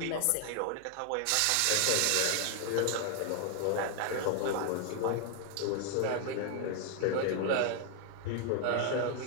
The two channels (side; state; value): both; different; correlation 0.00